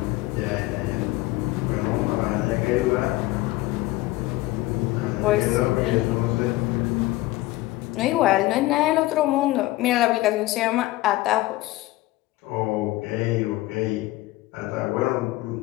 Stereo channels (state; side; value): quieter; right; 18.3 dB